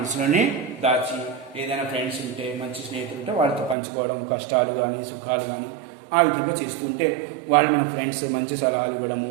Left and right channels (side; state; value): left; drops out; at 3.8 s